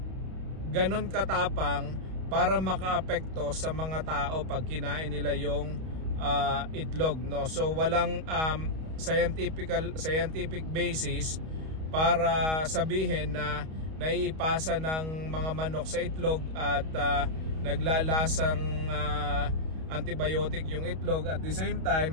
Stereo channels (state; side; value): late; left; 31 ms